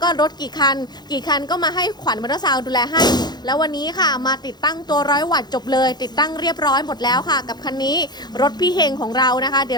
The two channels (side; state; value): right; late; 0.20 ms